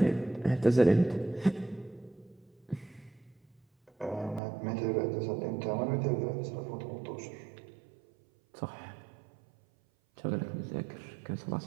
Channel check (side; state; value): left; drops out; at 4.4 s